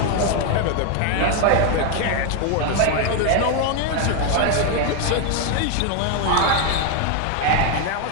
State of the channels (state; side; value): different; both; correlation 0.01